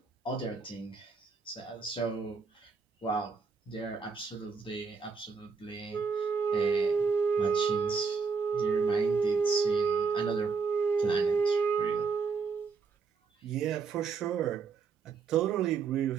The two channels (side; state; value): left; quieter; 5.2 dB